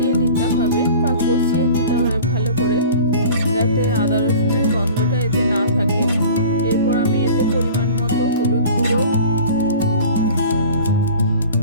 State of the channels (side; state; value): both; inverted; correlation -0.42